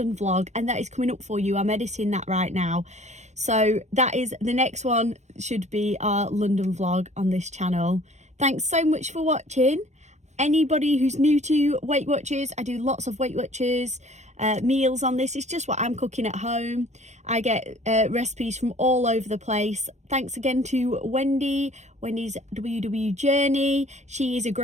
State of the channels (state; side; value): late; left; 0.33 ms